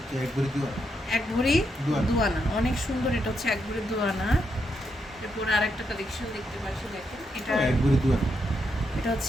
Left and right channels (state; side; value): normal; both; correlation 0.81